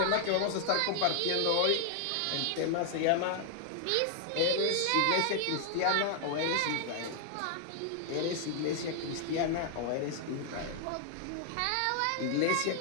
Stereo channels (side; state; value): both; different; correlation 0.00